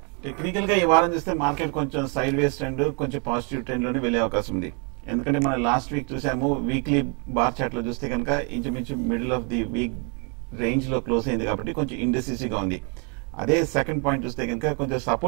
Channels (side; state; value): left; quieter; 36.6 dB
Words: టెక్నికల్ గా ఈ వారం చూస్తే మార్కెట్ కొంచెం సైడ్ వేస్ ట్రెండ్, కొంచెం పాజిటివ్ ట్రెండ్ లోనే వెళ్లే అవకాశం ఉంది. ఎందుకంటే మనం లాస్ట్ వీక్ చూసాము, వీక్లీ బార్ చార్ట్ లో చూస్తే కనుక ఇంచుమించు middle of the week range లో క్లోజ్ అయింది కాబట్టి కొంచెం ఇండెసిసిగా ఉంది. అదే సెకండ్ పాయింట్ చూస్తే కనుక కొంచెం